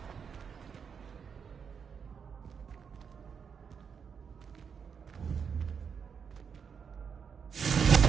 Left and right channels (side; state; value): left; quieter; 6.6 dB